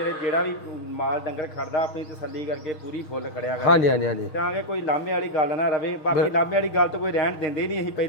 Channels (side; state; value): right; late; 6.4 ms